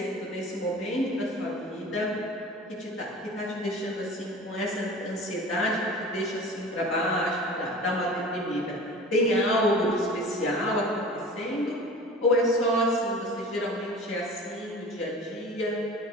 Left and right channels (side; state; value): both; normal; correlation 0.39